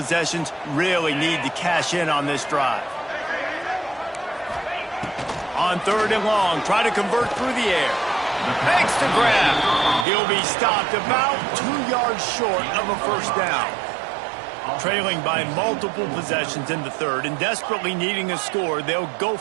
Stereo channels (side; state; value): left; drops out; at 10.1 s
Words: Really need to cash in on this drive. On 3rd and long, try to convert through the air. Makes the grab. He'll be stopped about 2 yards short of a 1st down. Trailing by multiple possessions in the 3rd and desperately needing a score, they'll go